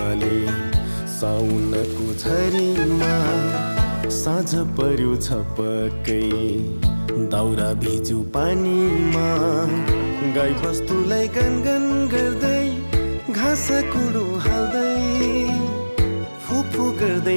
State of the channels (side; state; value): both; inverted; correlation -1.00